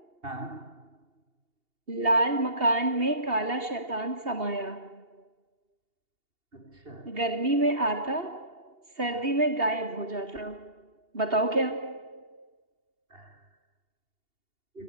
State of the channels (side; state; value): left; late; 2.8 ms